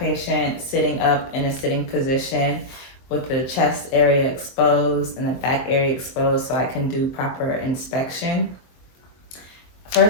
sitting up in a sitting position with the chest area exposed and the back area exposed so I can do proper inspection.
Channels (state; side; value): late; right; 23 ms